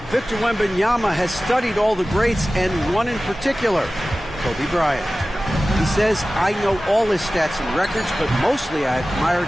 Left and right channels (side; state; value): both; normal; correlation 0.96